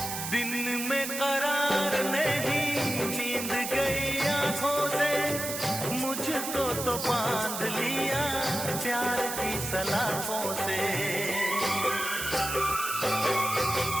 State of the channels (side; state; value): right; noise; hiss, 5 dB below the sound